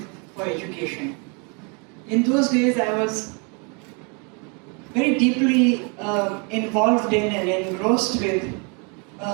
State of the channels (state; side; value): quieter; left; 34.5 dB